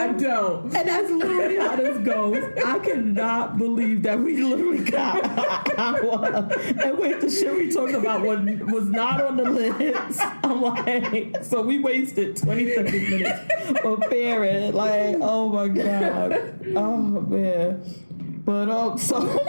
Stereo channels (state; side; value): inverted; both; correlation -1.00